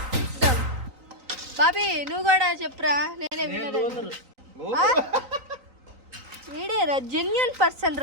బాబీ నువ్వు కూడా చెప్పురా. నేనే విన్నర్. వీడేరా జెన్యూన్ పర్సన్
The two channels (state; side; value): late; left; 3.9 ms